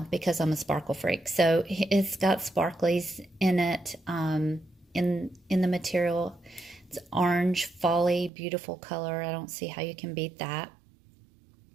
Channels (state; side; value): drops out; left; at 8.3 s